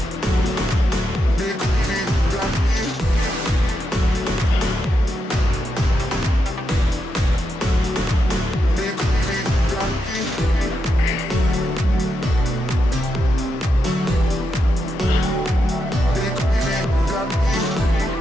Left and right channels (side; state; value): both; normal; correlation 0.84